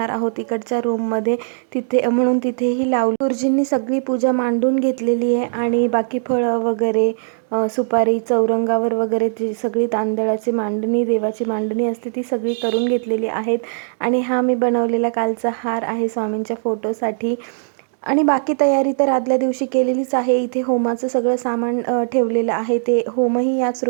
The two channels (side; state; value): left; silent; digital silence